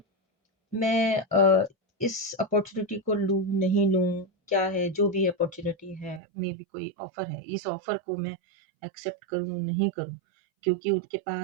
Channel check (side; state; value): left; drops out; at 6.2 s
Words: मैं इस अपॉर्चुनिटी को लूँ नहीं लूँ, क्या है जो भी अपॉर्चुनिटी है, मे बी कोई ऑफर है, इस ऑफर को मैं एक्सेप्ट करूँ नहीं करूँ, क्योंकि उनके